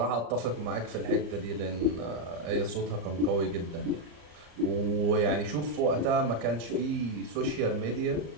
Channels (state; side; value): late; left; 34 ms